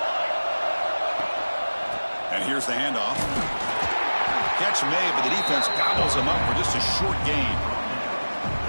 And here's the handoff. Catch made, but the defense gobbles him up for just a short gain.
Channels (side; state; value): both; inverted; correlation -1.00